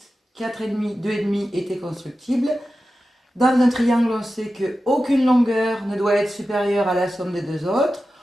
4,5, 2,5 était constructible. Dans un triangle, on sait qu'aucune longueur ne doit être supérieure à la somme des deux autres.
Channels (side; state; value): both; normal; correlation 0.93